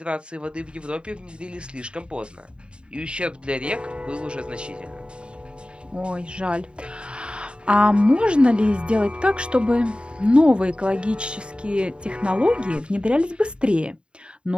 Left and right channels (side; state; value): left; late; 0.053 ms